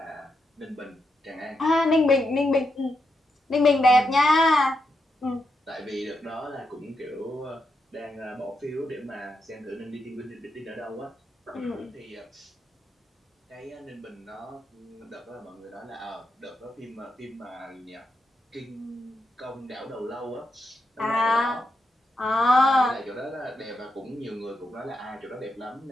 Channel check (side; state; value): both; normal; correlation 0.84